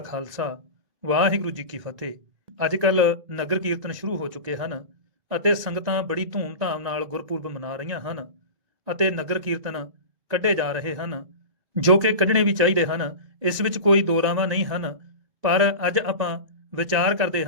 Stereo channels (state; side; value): late; left; 1.9 ms